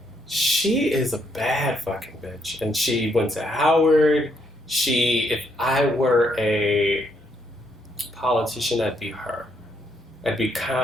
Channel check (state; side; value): normal; both; correlation 0.74